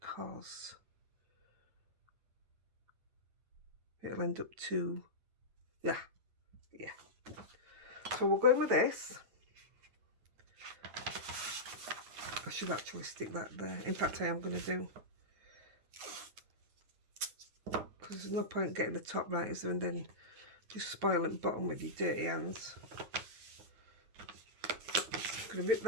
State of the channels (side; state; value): left; late; 9.3 ms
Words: it'll end up too... Yeah. So we're going with this. I should actually stick that there. In fact, I am going to do. Because there's no point getting the top right, is there? And then just spoiling the bottom with your dirty hands. I'm going to rip